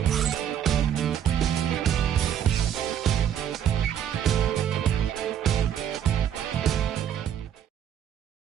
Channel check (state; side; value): quieter; left; 9.5 dB